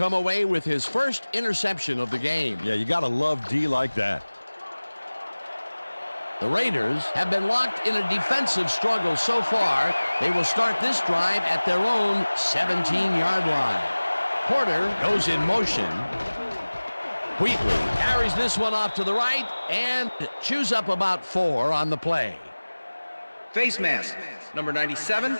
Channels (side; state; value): both; inverted; correlation -1.00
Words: away with his first interception of the game. Yeah, you gotta love D like that. The Raiders have been locked in a defensive struggle so far. They will start this drive at their own 17-yard line. Porter goes in motion. Wheatley carries this one off to the right and chews up about 4 on the play. Face mask, number 97,